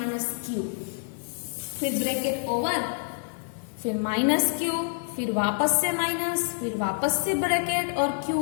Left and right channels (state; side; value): silent; right; 60 dB below the other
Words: क्यू, फिर ब्रैकेट ओवर, फिर माइनस क्यू, फिर वापस से माइनस, फिर वापस से ब्रैकेट और